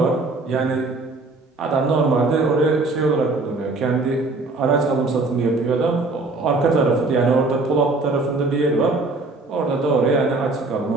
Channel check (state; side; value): quieter; left; 3.4 dB